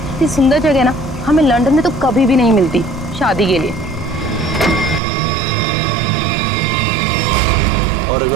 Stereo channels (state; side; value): drops out; left; at 5.0 s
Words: इतनी सुंदर जगह ना हमें लंदन में तो कभी भी नहीं मिलती शादी के लिए। और